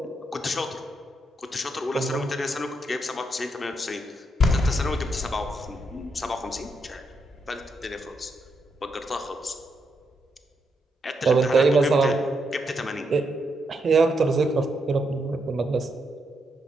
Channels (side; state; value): both; normal; correlation 0.80